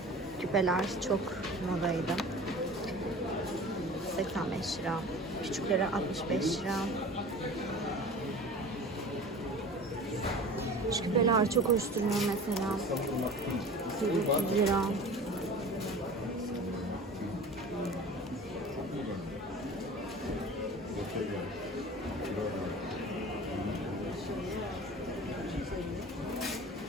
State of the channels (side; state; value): both; normal; correlation 0.39